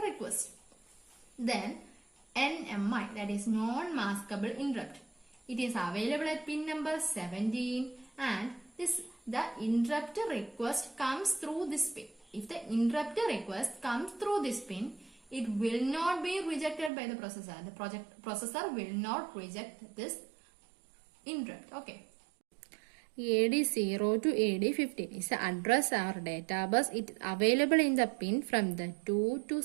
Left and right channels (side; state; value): left; drops out; at 16.9 s